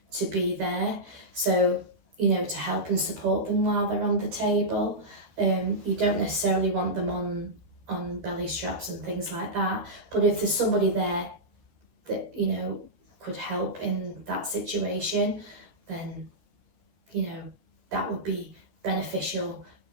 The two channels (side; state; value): left; late; 13 ms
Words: to be there. So, you know, to help and support them while they're on the table. You don't necessarily want them on belly straps and things like that. But if there's somebody there that, you know, could help in that situation, then, you know, that would be beneficial